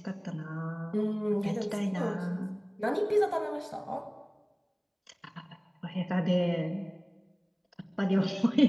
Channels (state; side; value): identical; both; correlation 1.00